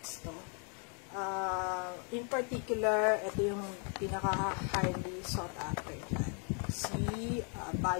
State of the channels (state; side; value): quieter; right; 39.9 dB